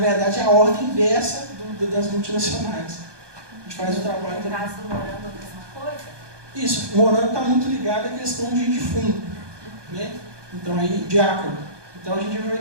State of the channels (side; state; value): left; late; 1.2 ms